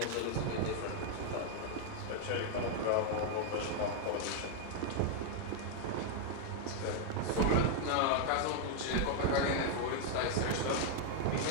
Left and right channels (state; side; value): different; both; correlation 0.00